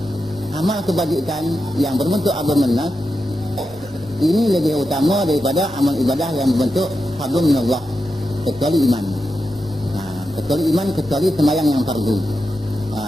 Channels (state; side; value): normal; both; correlation 0.89